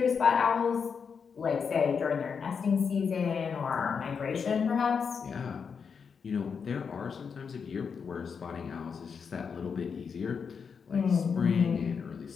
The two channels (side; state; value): right; quieter; 6.1 dB